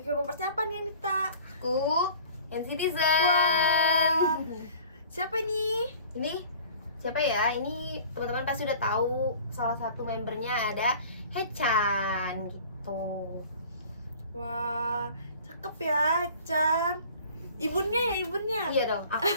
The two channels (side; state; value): both; inverted; correlation -0.46